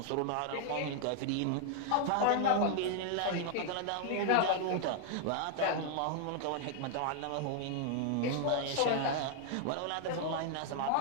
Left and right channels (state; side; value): different; both; correlation 0.00